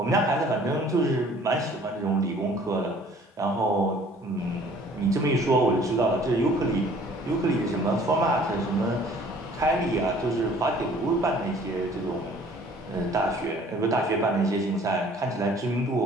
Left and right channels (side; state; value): both; normal; correlation 0.54